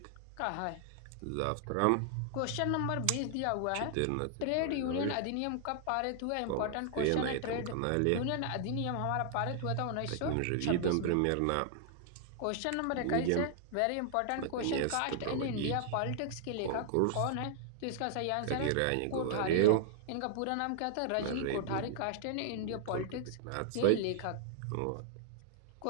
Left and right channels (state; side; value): different; both; correlation 0.00